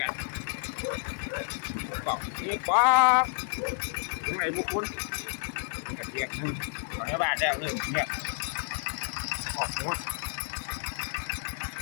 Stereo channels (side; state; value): right; silent; 58 dB below the other